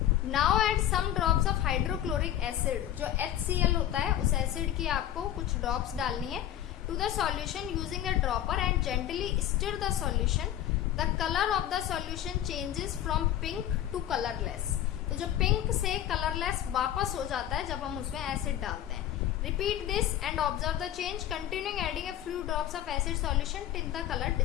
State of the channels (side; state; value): right; quieter; 11.8 dB